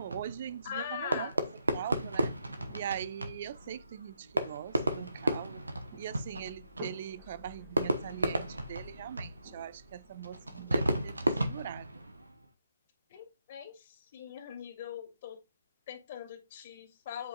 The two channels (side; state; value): both; inverted; correlation -0.80